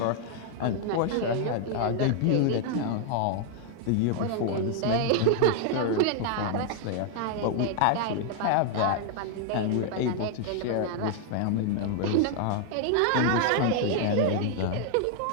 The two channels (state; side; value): different; both; correlation 0.00